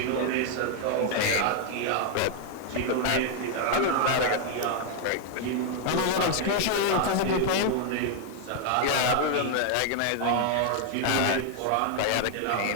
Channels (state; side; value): different; both; correlation 0.00